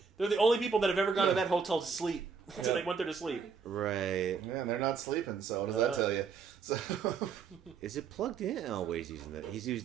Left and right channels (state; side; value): quieter; left; 5.7 dB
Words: They're the only people that have ever gone to that hotel to sleep. So they went there to sleep. Right. Man, they're not sleeping. So what does that tell you? So. Is it plugged in? Oh, wait, he's